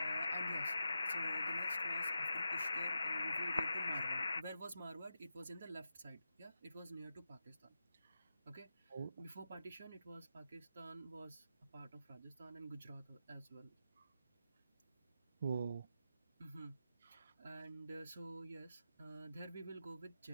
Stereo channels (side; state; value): both; inverted; correlation -0.89